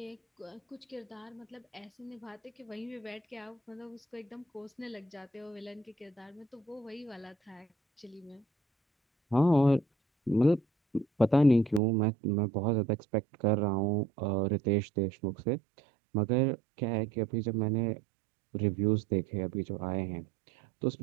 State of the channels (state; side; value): drops out; left; at 11.8 s